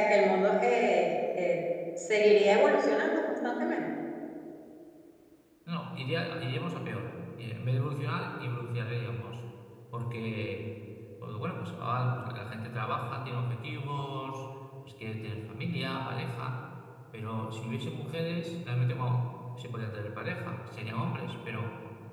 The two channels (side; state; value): both; identical; correlation 1.00